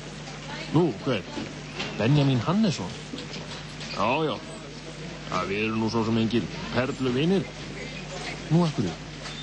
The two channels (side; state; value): both; identical; correlation 1.00